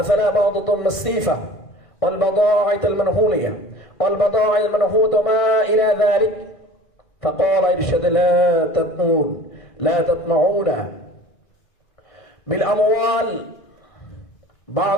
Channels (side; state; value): right; late; 1.6 ms